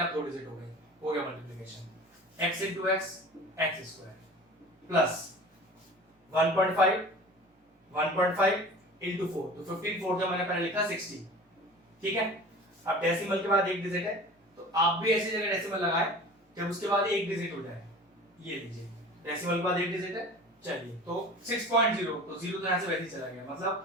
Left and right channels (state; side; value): normal; both; correlation 0.40